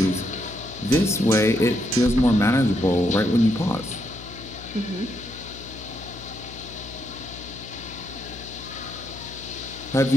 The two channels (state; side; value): noise; left; hum, 15 dB below the sound